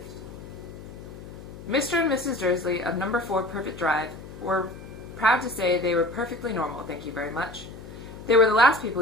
Mr. and Mrs. Dursley of number 4 Privet Drive were proud to say they were perfectly normal, thank you very much. They were the last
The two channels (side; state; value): left; noise; hum, 14 dB below the sound